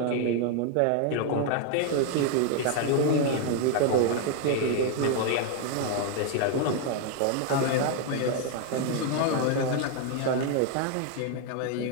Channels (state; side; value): different; both; correlation 0.00